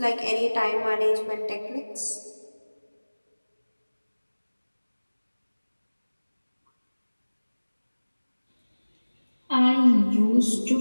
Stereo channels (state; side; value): inverted; both; correlation -1.00